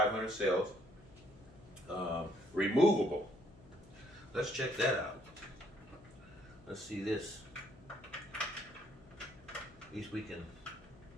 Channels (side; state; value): left; noise; hum, 22 dB below the sound